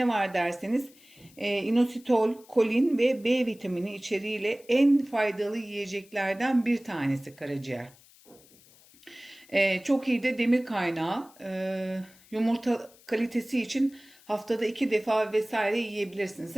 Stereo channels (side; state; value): left; noise; hiss, 26 dB below the sound